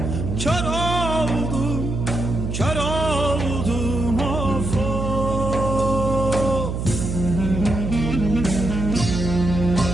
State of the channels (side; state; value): right; noise; hum, 3 dB below the sound